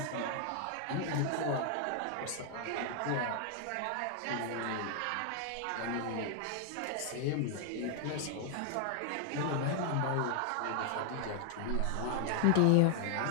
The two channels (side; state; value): both; different; correlation 0.00